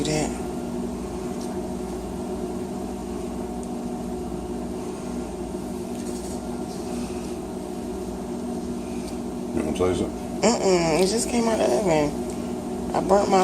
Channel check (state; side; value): noise; left; rumble, 25 dB below the sound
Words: that. You want to taste it? It just came out of the oven. I burnt